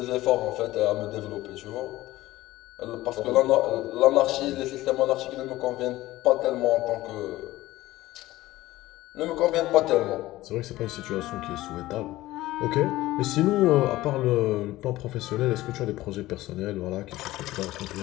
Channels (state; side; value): quieter; right; 17.0 dB